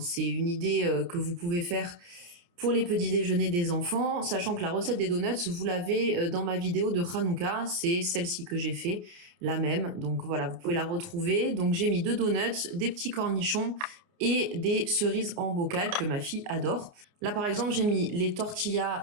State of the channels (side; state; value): left; late; 29 ms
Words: une idée que vous pouvez faire pour les petits déjeuners des enfants, sachant que la recette des donuts, vous l'avez dans ma vidéo de Hanouka, c'est celle-ci que j'ai fait, la même. Donc voilà, vous pouvez la retrouver. Donc j'ai mis 2 donuts, des petits cornichons et des cerises en bocal que ma fille adore. Là, par exemple, j'ai mis les